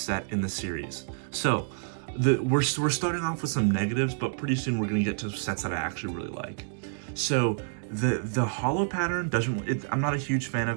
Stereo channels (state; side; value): silent; left; digital silence